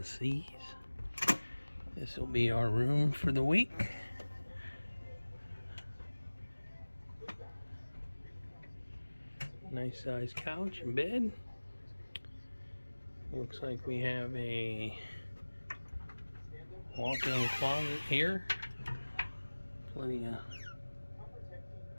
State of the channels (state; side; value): inverted; both; correlation -1.00